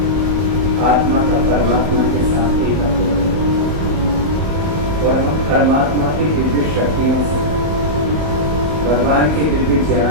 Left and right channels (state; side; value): late; left; 20 ms